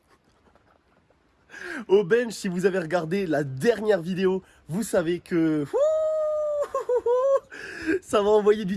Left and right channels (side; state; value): both; identical; correlation 1.00